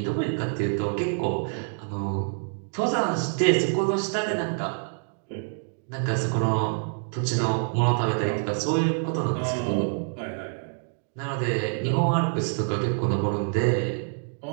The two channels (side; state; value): left; silent; 61 dB below the other